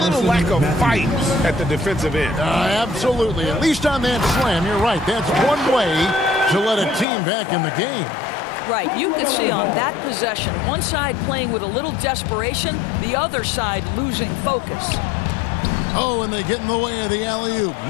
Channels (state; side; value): drops out; right; at 7.1 s